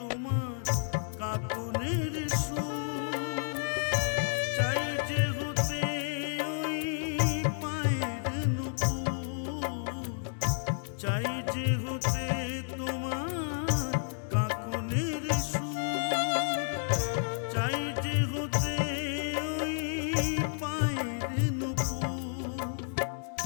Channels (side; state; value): right; silent; digital silence